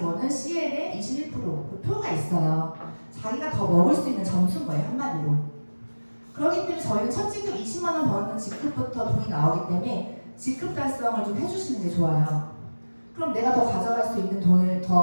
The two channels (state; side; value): inverted; both; correlation -1.00